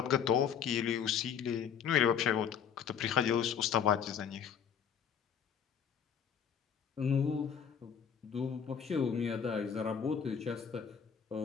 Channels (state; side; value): quieter; right; 7.7 dB